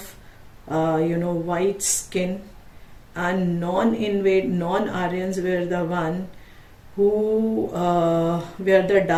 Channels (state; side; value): identical; both; correlation 1.00